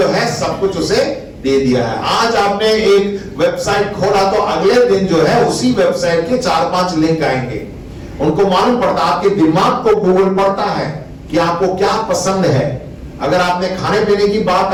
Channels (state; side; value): identical; both; correlation 1.00